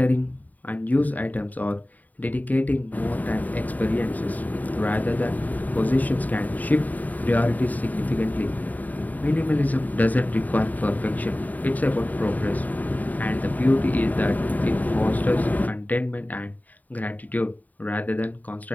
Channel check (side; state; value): right; late; 0.078 ms